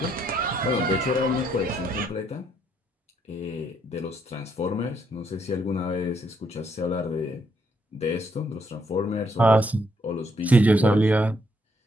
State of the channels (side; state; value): both; normal; correlation 0.74